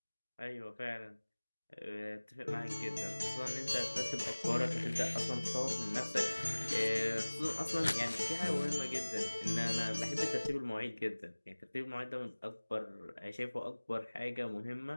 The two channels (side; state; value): both; inverted; correlation -1.00